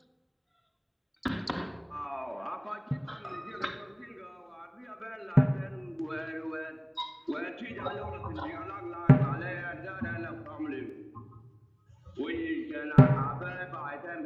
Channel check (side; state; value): both; identical; correlation 1.00